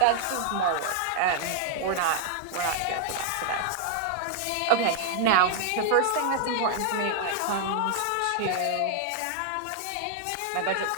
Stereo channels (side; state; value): both; different; correlation -0.01